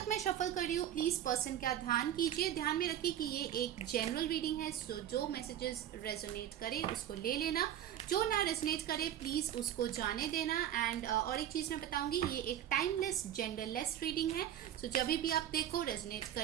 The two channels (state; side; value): quieter; left; 10.9 dB